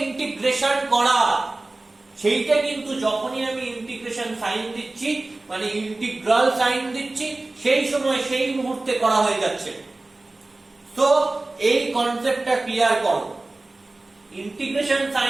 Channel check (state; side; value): quieter; left; 3.0 dB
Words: ইন্টিগ্রেশন করা সেইটা কিন্তু যখনই আমি ইন্টিগ্রেশন সাইন দিচ্ছি, মানে ইন্টিগ্রাল সাইন দিচ্ছি, সেই সময় সেই মুহূর্তে করা হয়ে যাচ্ছে। তো এই কনসেপ্টটা ক্লিয়ার করো। ইন্টিগ্রেশন